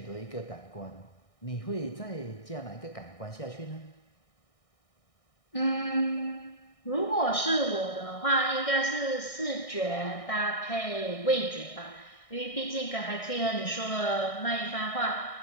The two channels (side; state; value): right; late; 1.6 ms